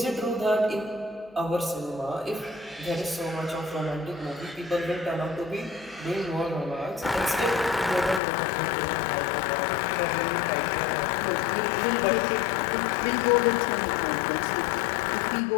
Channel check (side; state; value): right; drops out; at 8.2 s